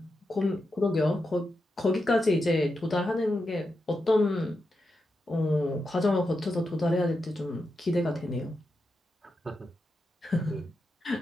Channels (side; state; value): both; normal; correlation 0.87